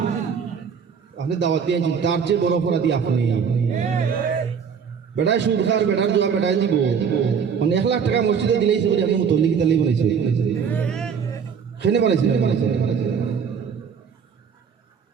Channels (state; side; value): quieter; left; 6.7 dB